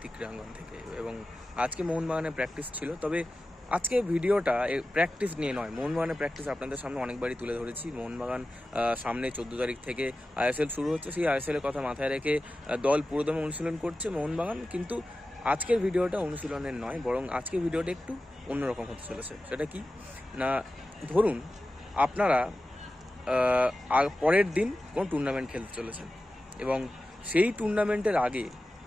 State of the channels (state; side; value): normal; both; correlation 0.94